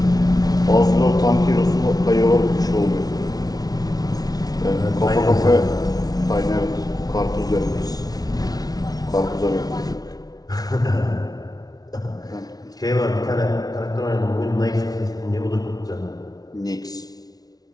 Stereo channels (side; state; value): right; late; 0.19 ms